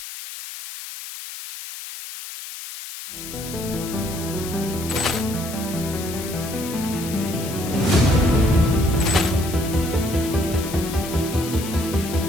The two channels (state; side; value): noise; left; hiss, 10 dB below the sound